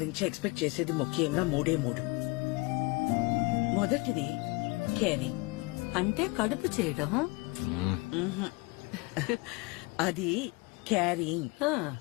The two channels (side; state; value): right; quieter; 24.9 dB